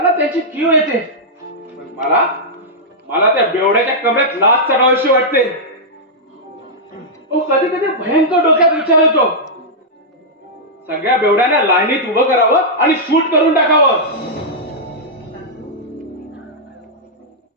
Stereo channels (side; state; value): both; normal; correlation -0.09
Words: त्याची कीव येते. पण मला त्या बेवड्याच्या कमरेत लाच चढावीशी वाटते. कधी कधी भयंकर डोक्यात विचार येतो, सगळ्या बेवड्यांना लाईनीत उभं करावं आणि शूट करून टाकावं.